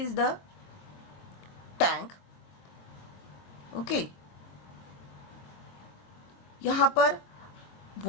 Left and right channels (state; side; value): late; right; 23 ms